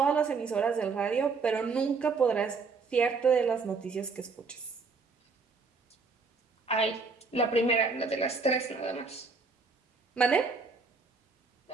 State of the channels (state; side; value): quieter; left; 4.5 dB